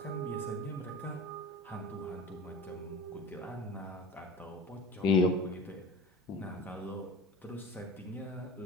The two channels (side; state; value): both; normal; correlation 0.35